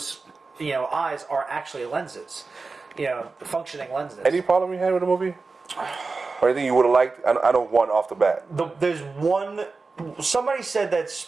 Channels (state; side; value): quieter; left; 4.1 dB